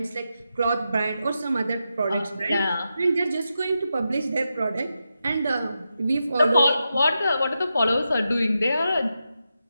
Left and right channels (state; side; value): inverted; both; correlation -0.88